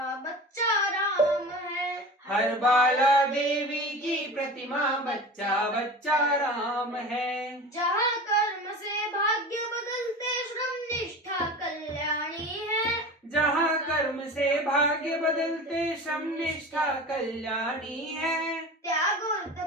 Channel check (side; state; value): both; normal; correlation 0.34